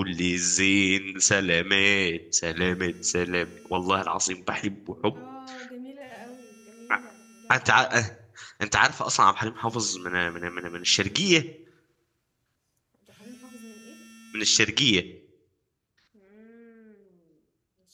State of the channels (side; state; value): both; identical; correlation 1.00